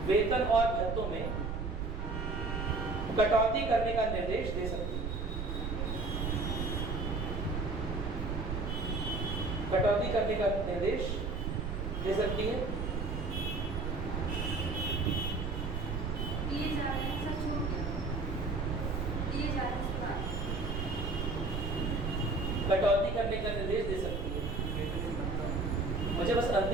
में कटौती करने का निर्देश दे सकती है। कटौती करने का निर्देश दे सकती है। कटौती करने का निर्देश दे सकती है। मुझे बस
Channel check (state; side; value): noise; right; rumble, 3 dB below the sound